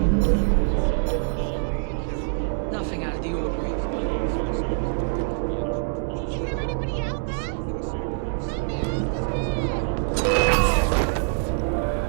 Nothing out of the ordinary.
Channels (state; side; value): silent; left; 62 dB below the other